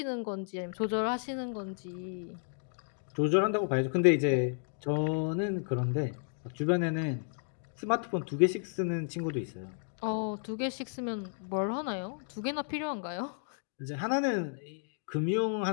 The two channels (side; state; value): right; silent; digital silence